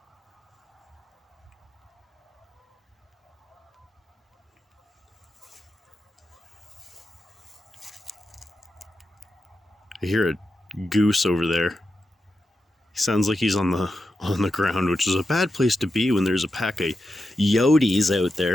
I hear a goose over there. He sounds like he's on the ground, which is a bad place to be when there's a pack of coyotes out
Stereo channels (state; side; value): normal; both; correlation 0.88